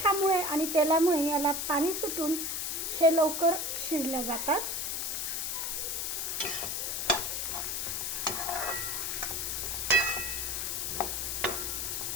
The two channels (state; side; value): noise; left; hiss, 1 dB below the sound